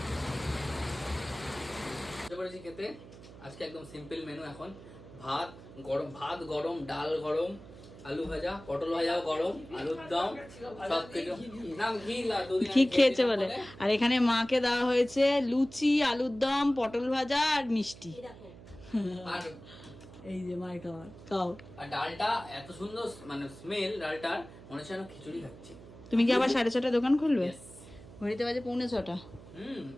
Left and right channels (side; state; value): right; noise; hum, 18 dB below the sound